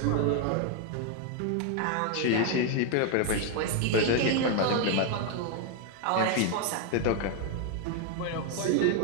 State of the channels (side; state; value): both; different; correlation 0.01